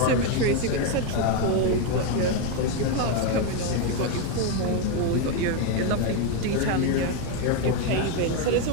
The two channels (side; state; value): both; different; correlation 0.02